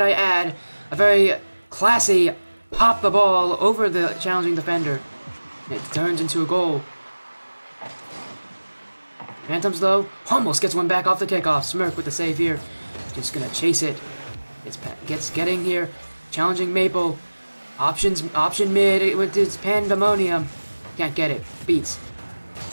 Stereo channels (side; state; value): both; inverted; correlation -1.00